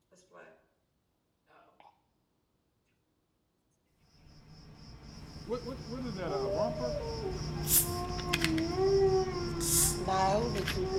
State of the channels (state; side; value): identical; both; correlation 1.00